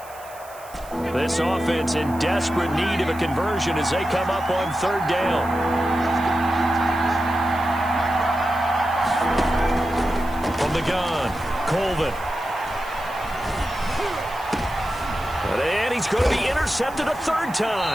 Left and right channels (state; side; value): noise; right; hiss, 21 dB below the sound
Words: This offense in desperate need of a conversion as they come up on 3rd down. From the gun, Colvin. And he's going to be intercepted a 3rd